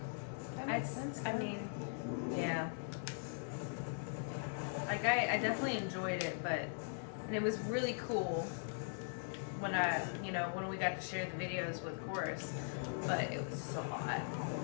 That makes sense. I mean, yeah. Like, I definitely enjoyed it, and it was really cool when when we got to share the videos with chorus, but it was just a lot.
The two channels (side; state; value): right; silent; digital silence